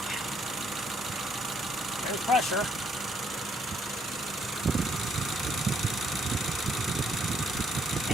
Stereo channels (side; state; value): both; normal; correlation 0.71